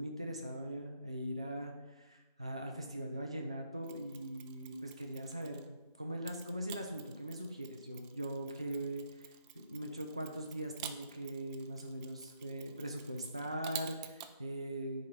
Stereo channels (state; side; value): inverted; both; correlation -0.73